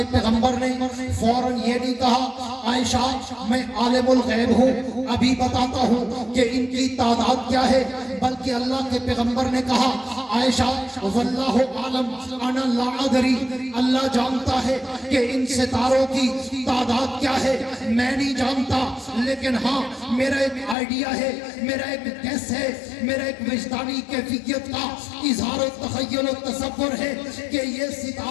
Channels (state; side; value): drops out; right; at 20.8 s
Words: पैगंबर ने फौरन ये नहीं कहा आयशा मैं आलिमुल गैब हूँ, अभी बताता हूँ कि इनकी तादाद क्या है, बल्कि अल्लाह के पैगंबर ने कहा आयशा वल्लाहु आलम अना ला अदरी, अल्लाह जानता है कि इन सितारों की तादाद क्या है, मैं नहीं जानता, लेकिन हाँ मेरा एक आइडिया है, मेरा एक गेस है, मेरा एक विजदानी कैफियत का इजहार और तखय्युल और तसव्वुर है कि ये